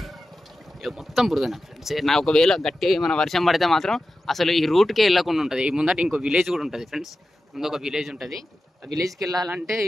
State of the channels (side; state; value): both; normal; correlation 0.93